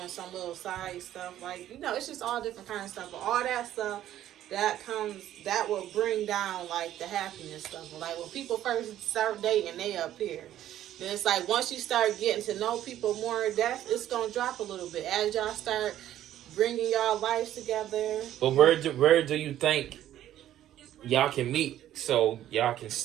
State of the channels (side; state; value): left; quieter; 12.3 dB